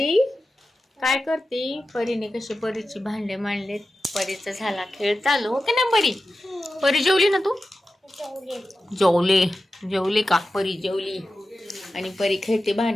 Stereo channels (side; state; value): both; normal; correlation 0.93